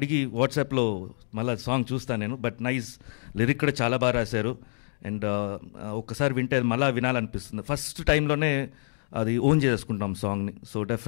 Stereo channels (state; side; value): silent; right; digital silence